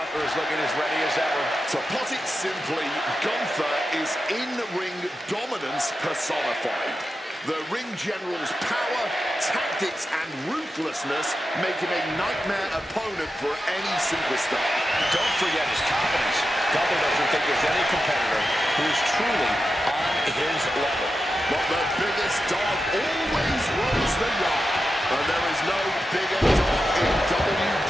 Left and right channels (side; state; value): both; normal; correlation 0.90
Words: is looking as ready as ever. To put it simply, Gunther is in-ring dominance personified. The ring general's power, tactics, and ruthlessness make him a nightmare opponent for any superstar. Don't forget his confidence. Gunther doesn't think there's any competitor who is truly on his level. But the biggest dog always runs the yard. And there is no bigger dog in